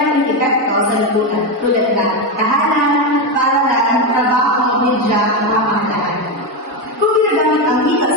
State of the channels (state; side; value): normal; both; correlation 0.11